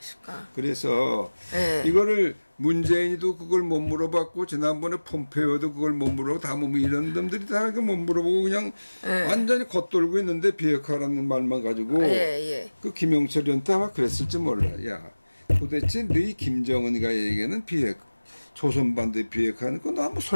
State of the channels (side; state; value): both; inverted; correlation -1.00